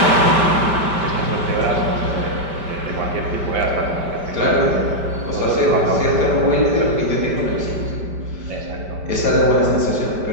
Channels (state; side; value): late; left; 5.1 ms